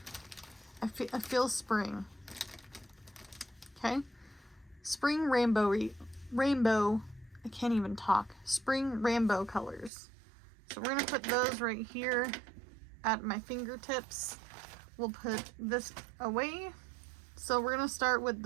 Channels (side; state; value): left; drops out; at 9.9 s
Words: I feel spring. Okay, spring rainbow, I can't even talk. Spring rainbow colors. So we're gonna put those right here at my fingertips. We'll put this away. So we're gonna start with